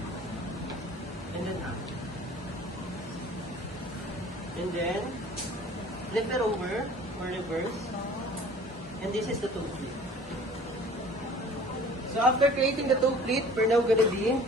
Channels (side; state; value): both; normal; correlation 0.48